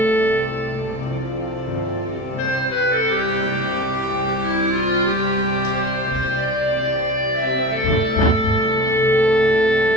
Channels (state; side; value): late; right; 39 ms